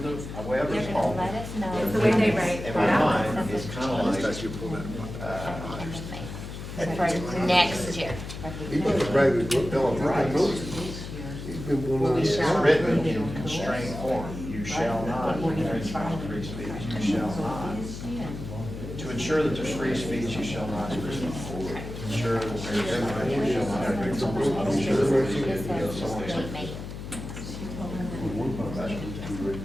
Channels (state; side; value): noise; left; hum, 9 dB below the sound